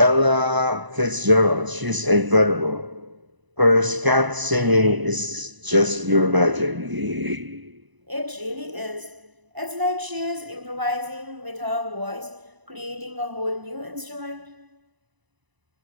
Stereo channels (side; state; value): left; late; 1.0 ms